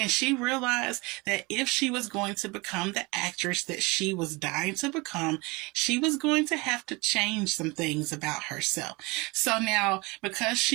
she realized that if she was going to become the actress that she was dying to become, she was going to have to change some things about herself. So now, because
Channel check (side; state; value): left; quieter; 25.5 dB